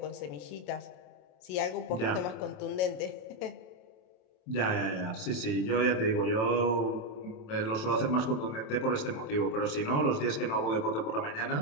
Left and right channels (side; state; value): right; late; 27 ms